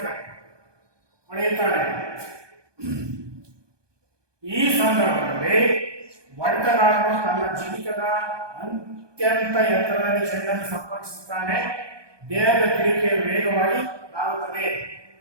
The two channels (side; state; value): left; late; 1.2 ms